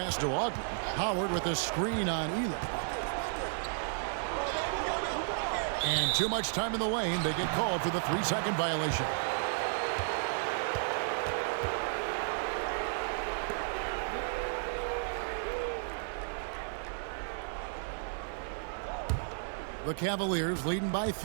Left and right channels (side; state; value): left; silent; digital silence